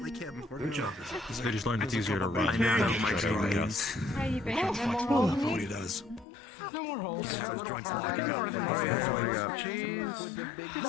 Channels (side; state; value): right; drops out; at 6.2 s